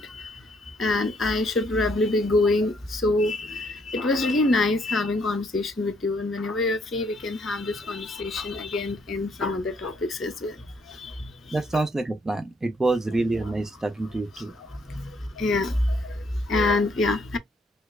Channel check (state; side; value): normal; both; correlation 0.69